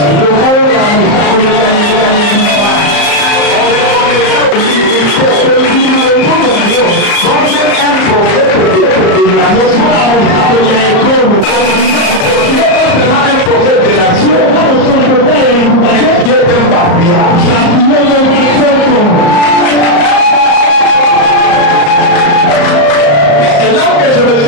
C'est là que je me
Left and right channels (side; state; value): right; late; 34 ms